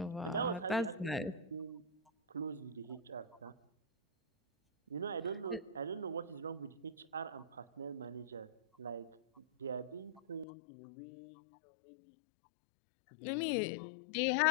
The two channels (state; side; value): drops out; right; at 10.5 s